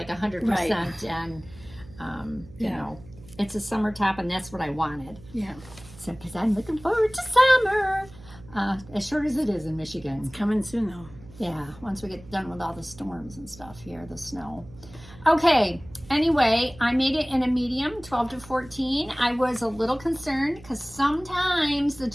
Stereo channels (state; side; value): noise; right; hum, 20 dB below the sound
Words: 100%, and you know, it's a summer top, and that's what I wanted. Yeah. So, because I'm looking forward to summer, as short as it is in Michigan. Coming soon though. Yeah, once we get done with all the storms and stuff here, the snow. Okay, anyway, I made it in a medium, 12 to 14. I was a little concerned because sometimes the